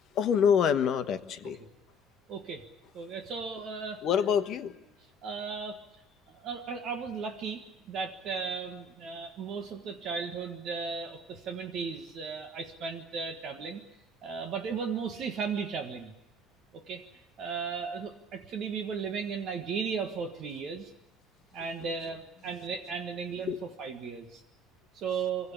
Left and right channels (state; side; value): normal; both; correlation 0.51